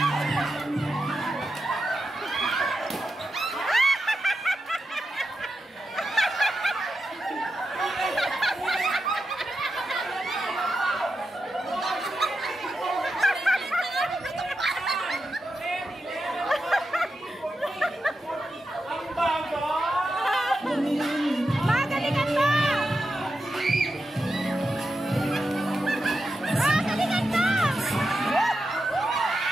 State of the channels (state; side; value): normal; both; correlation 0.89